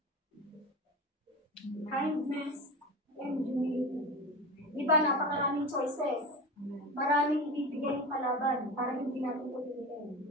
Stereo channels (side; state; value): both; normal; correlation 0.28